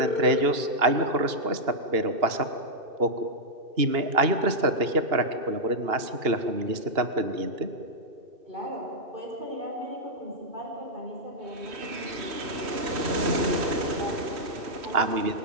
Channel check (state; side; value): late; left; 2.8 ms